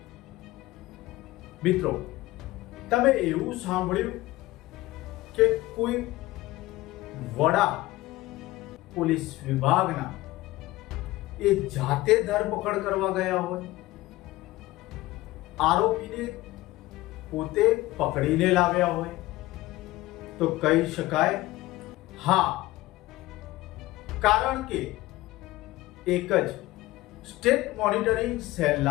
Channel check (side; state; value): right; quieter; 18.1 dB